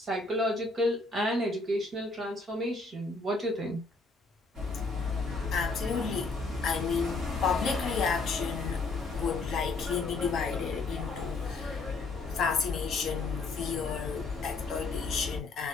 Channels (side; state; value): right; quieter; 3.6 dB